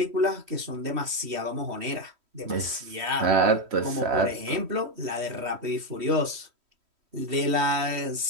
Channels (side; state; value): left; late; 3.1 ms